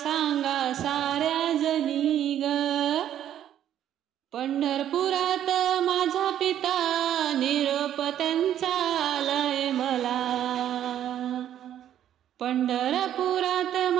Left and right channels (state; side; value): quieter; left; 10.8 dB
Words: साऱ्या जनी ग. पंढरपुरात माझा पिता निरोप त्यांचा आलाय मला, पंढरपुरात